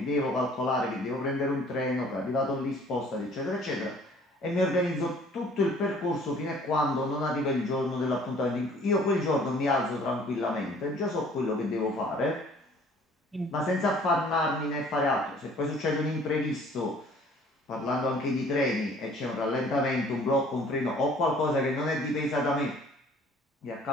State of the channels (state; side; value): normal; both; correlation 0.54